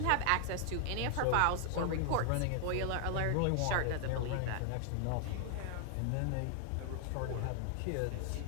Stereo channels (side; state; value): both; different; correlation 0.00